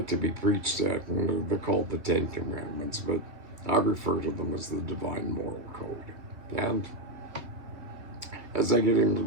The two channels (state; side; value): late; left; 2.3 ms